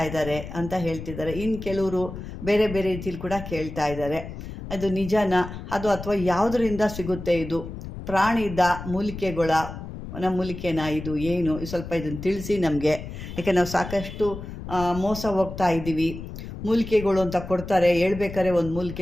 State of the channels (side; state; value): left; noise; rumble, 10 dB below the sound